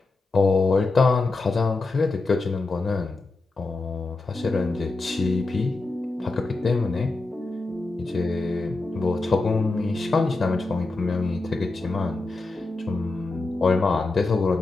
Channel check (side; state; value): right; quieter; 3.4 dB